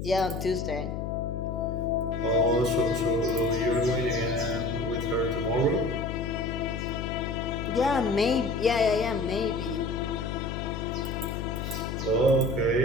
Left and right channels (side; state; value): left; noise; hum, 5 dB below the sound